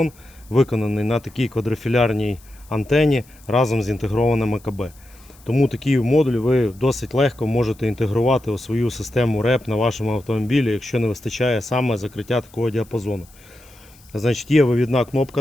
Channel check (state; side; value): noise; left; hiss, 27 dB below the sound